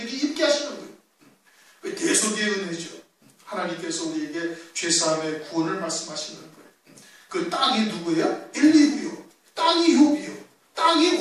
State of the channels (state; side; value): identical; both; correlation 1.00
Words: 입게 하시는 거예요. 대속의 은혜죠. 하나님께서 우리에게 죄사함의 구원을 말씀하시는 거예요. 그 땅이 누구예요? 엘리후요. 땅이 욥이요. 땅이